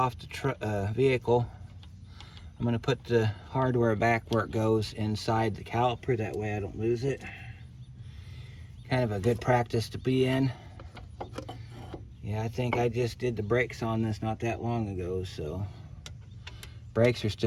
the vehicle, I'm going to put the hardware back where it goes inside the caliper. That way I don't lose it. Kind of a good practice to be in. Yeah, I think I just did the brakes on this not that long ago, so brakes are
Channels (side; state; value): both; identical; correlation 1.00